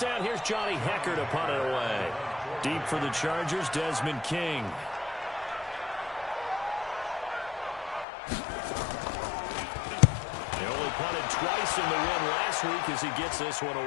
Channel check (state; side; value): drops out; right; at 8.1 s